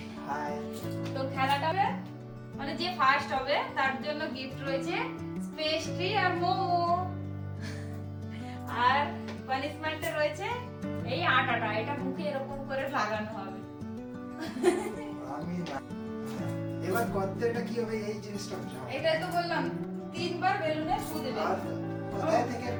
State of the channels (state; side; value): identical; both; correlation 1.00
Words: হাই তো খেলাটা হবে মানে যে ফার্স্ট হবে তার জন্য গিফট রয়েছে পেস্ট্রি আর মোমো। আর পানিশমেন্টে রয়েছে এই আটাটা, এটা মুখে এরকম করে লাগানো হবে। আমি না এবার কতটা কি হবে এই জিনিসটা বুঝাও। এটাই তো বললাম, তিনবার বেলুনে ফু দেবে। আর কোথায় থেকে